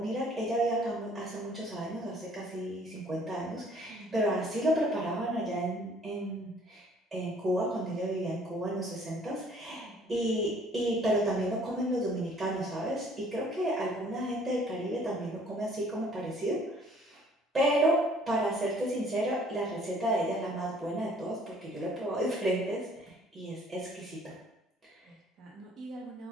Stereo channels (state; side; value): normal; both; correlation 0.58